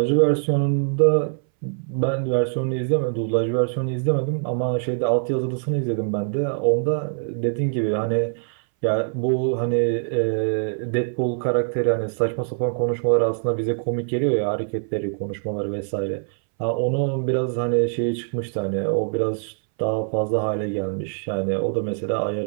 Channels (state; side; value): silent; left; 61 dB below the other